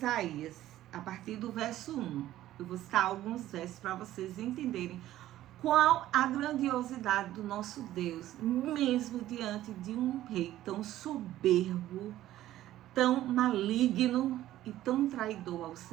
a partir do verso 1. Eu vou citar alguns versos para vocês entenderem qual a grandiosidade do nosso Deus, mesmo diante de um rei tão soberbo, tão maligno e tão traidor ao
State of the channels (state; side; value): quieter; left; 13.9 dB